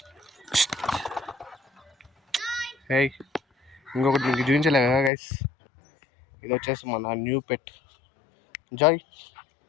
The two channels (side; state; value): right; drops out; at 5.1 s